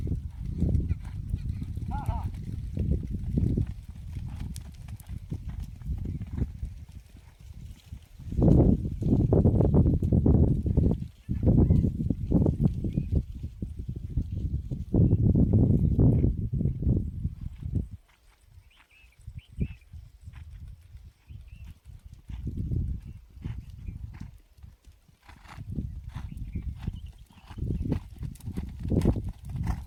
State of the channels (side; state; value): both; identical; correlation 1.00